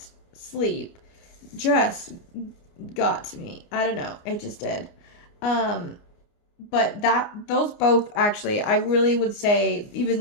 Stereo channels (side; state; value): right; late; 29 ms